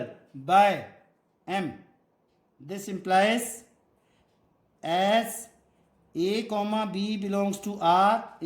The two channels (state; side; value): identical; both; correlation 1.00